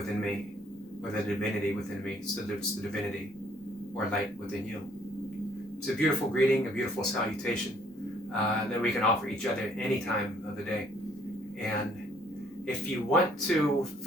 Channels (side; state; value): both; normal; correlation 0.64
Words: me, or the divinity within me salutes the divinity or light within you. It's a beautiful greeting, a beautiful salutation that we can offer each other any time of the day. And if you want to